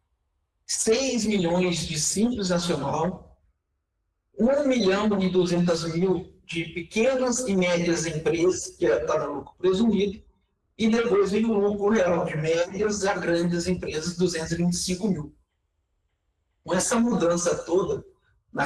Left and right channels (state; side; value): identical; both; correlation 1.00